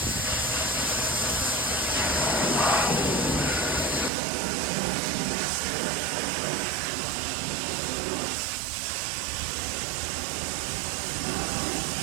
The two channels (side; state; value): left; drops out; at 4.1 s